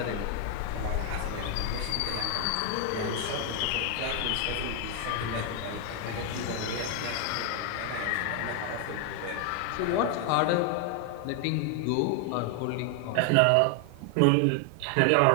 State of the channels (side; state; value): both; different; correlation 0.00